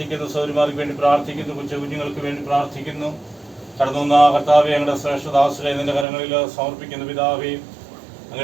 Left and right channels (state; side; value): drops out; left; at 6.1 s